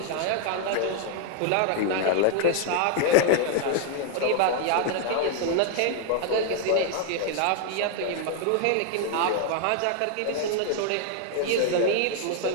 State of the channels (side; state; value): both; different; correlation 0.00